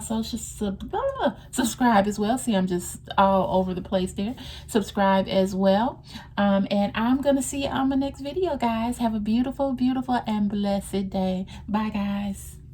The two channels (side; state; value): both; identical; correlation 1.00